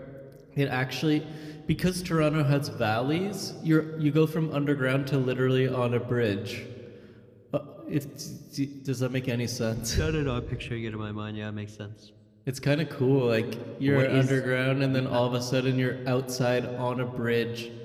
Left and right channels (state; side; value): identical; both; correlation 1.00